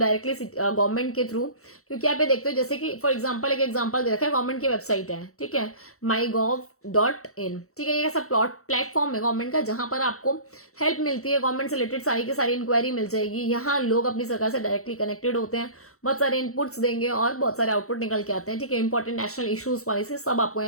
गवर्नमेंट के थ्रू। क्योंकि आप ये देखते हो, जैसे कि फॉर एग्जाम्पल एक एग्जाम्पल दे रखा है, गवर्नमेंट की वेबसाइट है, ठीक है, mygov.in, ठीक है, ये ऐसा प्लेटफॉर्म है गवर्नमेंट का जहां पर आपको हेल्प मिलती है, गवर्नमेंट से रिलेटेड सारी की सारी इंक्वायरी मिल जाएगी। यहाँ लोग अपनी सरकार से डायरेक्टली कनेक्टेड होते हैं, बहुत सारे इनपुट्स देंगे और बहुत सारे आउटपुट निकल के आते हैं, ठीक है। इंपॉर्टेंट नेशनल इश्यूज पॉलिसी सब आपको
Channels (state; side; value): late; right; 0.64 ms